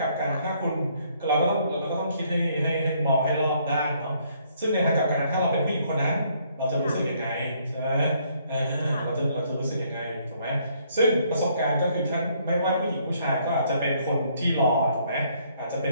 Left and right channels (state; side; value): inverted; both; correlation -0.67